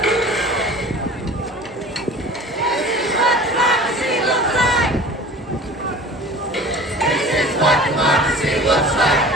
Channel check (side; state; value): both; normal; correlation 0.41